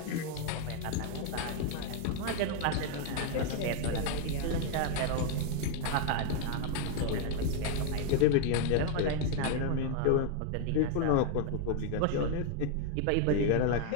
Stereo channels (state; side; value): different; both; correlation 0.00